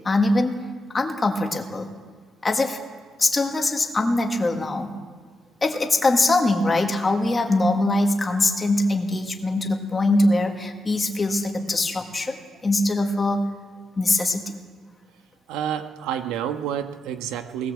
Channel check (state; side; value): normal; both; correlation 0.88